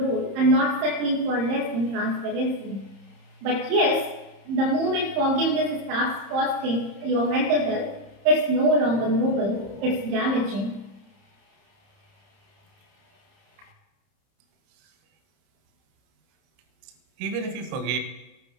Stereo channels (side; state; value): left; late; 30 ms